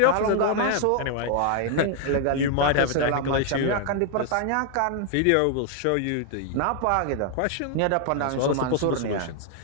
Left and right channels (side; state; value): both; different; correlation 0.00